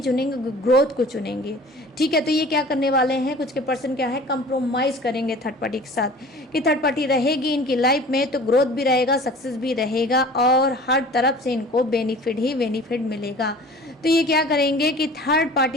ग्रोथ को चुनेंगे, ठीक है। तो ये क्या करने वाले हैं, कुछ के पर्सन क्या है, कंप्रोमाइज़ करेंगे थर्ड पार्टी के साथ, कि थर्ड पार्टी रहेगी इनकी लाइफ में तो ग्रोथ भी रहेगा, सक्सेस भी रहेगा, और हर तरफ से इनको बेनिफिट ही बेनिफिट मिलेगा। तो ये क्या करेंगे कि थर्ड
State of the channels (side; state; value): both; normal; correlation 0.44